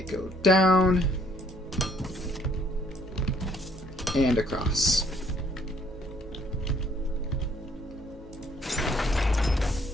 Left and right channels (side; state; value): both; normal; correlation 0.63